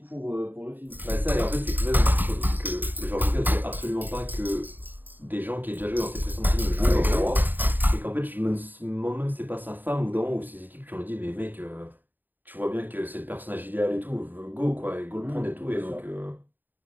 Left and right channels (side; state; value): left; late; 0.090 ms